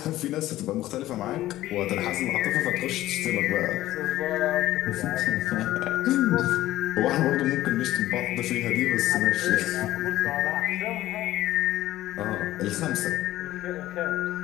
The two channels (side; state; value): right; quieter; 15.1 dB